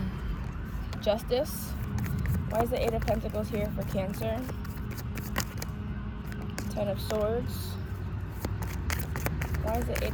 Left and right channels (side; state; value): both; identical; correlation 1.00